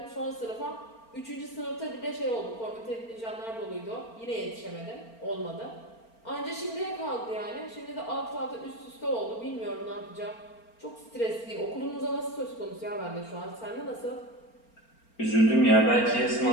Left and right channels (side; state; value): right; late; 4.4 ms